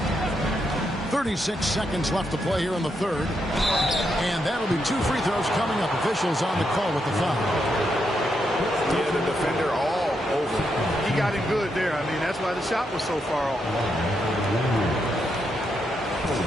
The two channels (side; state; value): both; normal; correlation 0.81